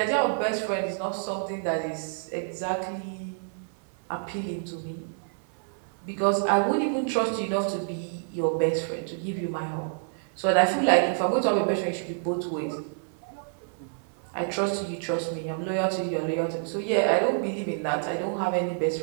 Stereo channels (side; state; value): left; silent; 59 dB below the other